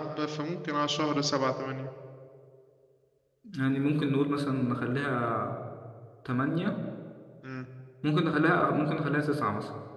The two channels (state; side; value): identical; both; correlation 1.00